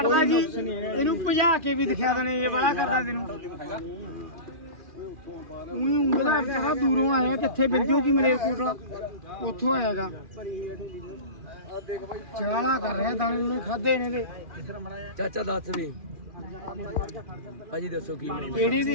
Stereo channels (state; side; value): late; left; 2.4 ms